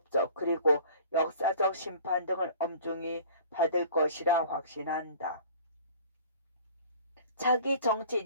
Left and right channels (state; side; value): inverted; both; correlation -0.46